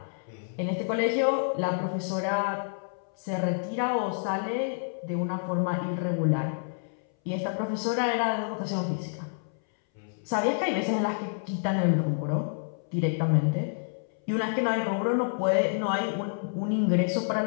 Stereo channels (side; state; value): right; silent; 59 dB below the other